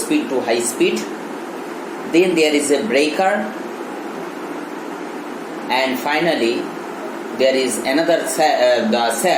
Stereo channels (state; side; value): identical; both; correlation 1.00